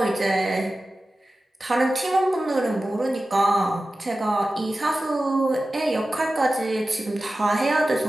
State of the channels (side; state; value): both; normal; correlation 0.95